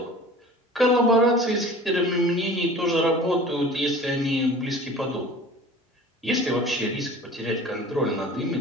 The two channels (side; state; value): both; normal; correlation 0.42